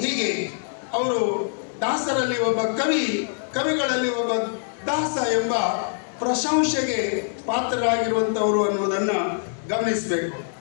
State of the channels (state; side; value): silent; right; digital silence